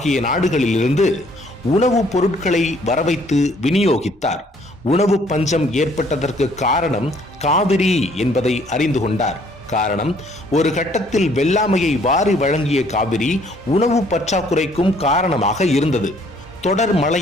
நாடுகளிலிருந்து உணவுப் பொருட்களை வரவைத்து விநியோகித்தார். உணவு பஞ்சம் ஏற்பட்டதற்கு காரணம் காவிரி என்பதை அறிந்து கொண்டார். காரணம், ஒரு கட்டத்தில் வெள்ளாமையை வாரி வழங்கிய காவிரி உணவு பற்றாக்குறைக்கும் காரணமாக இருந்தது. தொடர்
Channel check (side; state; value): both; normal; correlation 0.62